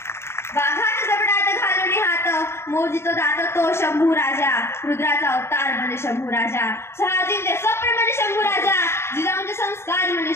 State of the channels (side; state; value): right; late; 0.12 ms